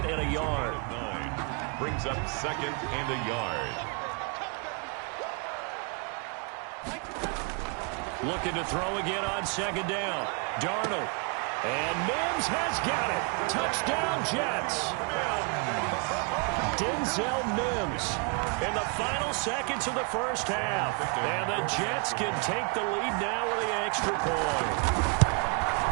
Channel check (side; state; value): left; quieter; 36.3 dB